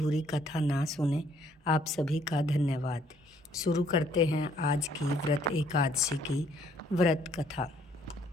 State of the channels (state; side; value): normal; both; correlation 0.65